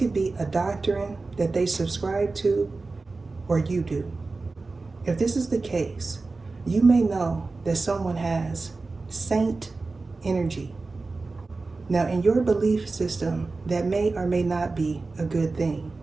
be a doctrine that they subscribe to or you do. If this is the case, you may know that someone has saint energy. Now in your belief system, that may or may not be a good thing.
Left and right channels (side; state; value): left; quieter; 3.7 dB